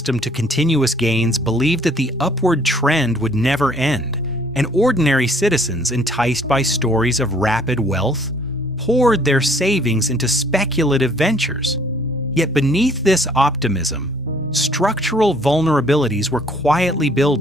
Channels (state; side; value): normal; both; correlation 0.60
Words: to continuous gains believed that the upward trend would never end, and ordinary citizens, enticed by stories of rapid wealth, poured their savings into speculative ventures. Yet beneath this optimism, structural vulnerabilities were quietly